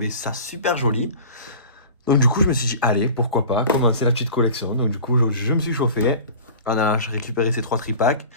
ça super joli. Donc du coup, je me suis dit, allez, pourquoi pas, commencer la petite collection. Donc du coup, je me suis chauffé. On a récupéré ces 3 tripacks.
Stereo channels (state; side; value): inverted; both; correlation -0.39